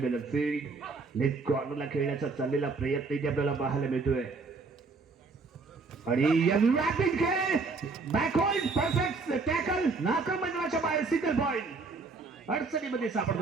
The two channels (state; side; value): quieter; left; 4.1 dB